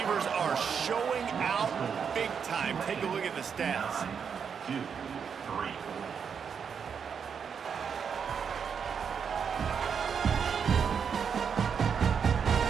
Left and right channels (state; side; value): quieter; left; 6.8 dB